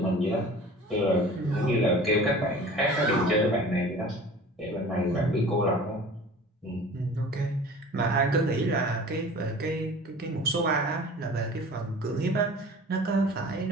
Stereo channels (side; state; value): both; normal; correlation 0.42